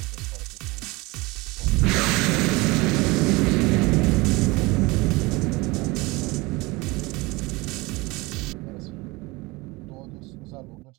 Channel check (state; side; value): quieter; left; 23.5 dB